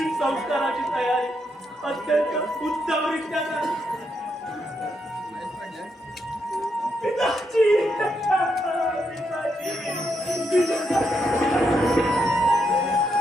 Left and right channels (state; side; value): normal; both; correlation 0.80